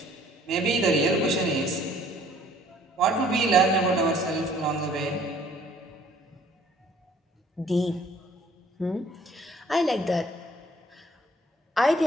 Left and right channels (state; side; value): normal; both; correlation 0.58